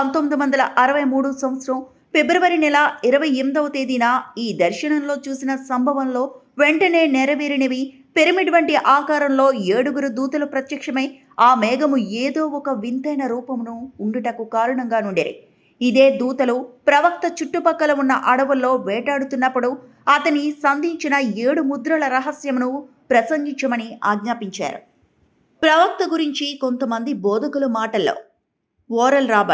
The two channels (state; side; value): identical; both; correlation 1.00